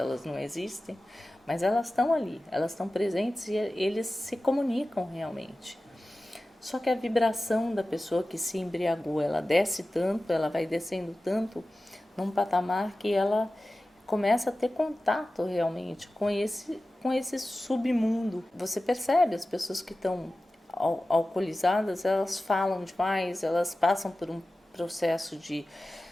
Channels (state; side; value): normal; both; correlation 0.95